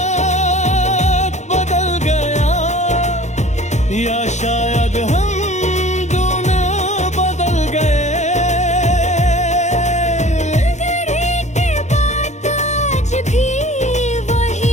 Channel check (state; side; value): late; right; 0.34 ms